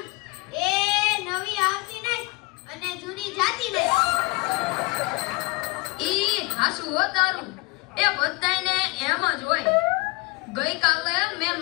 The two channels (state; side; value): quieter; right; 25.2 dB